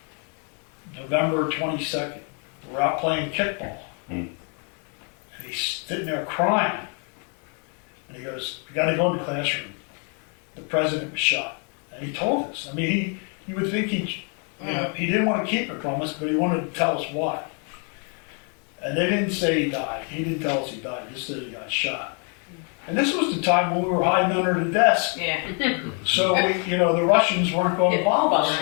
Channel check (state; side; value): quieter; right; 39.4 dB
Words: November 22nd. We're out playing kickball. And he's sitting there crying. And he goes, you got to go in the classroom. The president was shot. And he told us. I mean, you would think he didn't want to keep it from us, but he wanted to tell us why. And they didn't say he died. He didn't tell us he died. He just said he got shot. And this was the time when we were hiding under the desk. Yeah. So the Russians weren't going to bomb us,